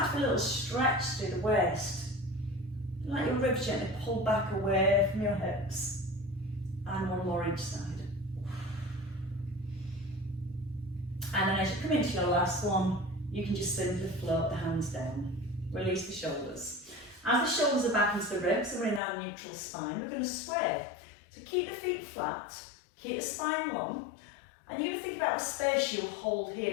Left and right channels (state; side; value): drops out; right; at 19.0 s